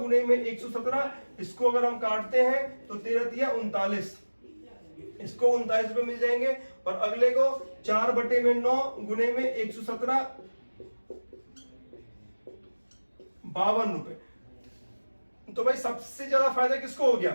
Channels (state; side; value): inverted; both; correlation -1.00